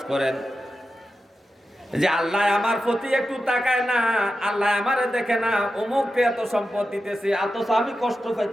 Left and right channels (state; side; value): normal; both; correlation 0.90